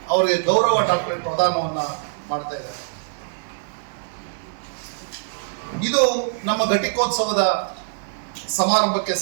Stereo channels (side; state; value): left; silent; 63 dB below the other